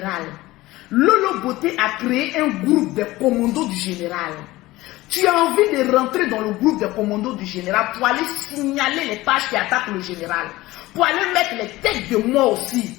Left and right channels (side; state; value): right; quieter; 18.5 dB